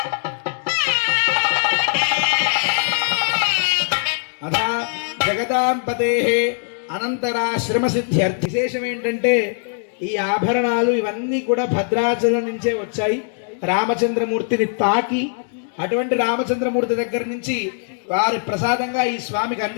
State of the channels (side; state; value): right; silent; 62 dB below the other